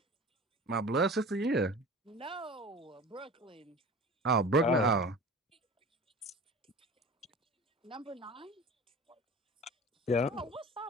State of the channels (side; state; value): both; normal; correlation 0.38